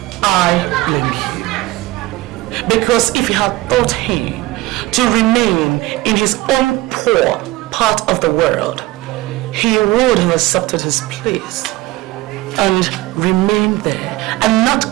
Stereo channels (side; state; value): left; quieter; 18.4 dB